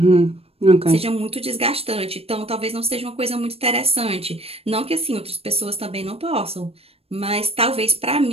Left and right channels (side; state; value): left; late; 0.28 ms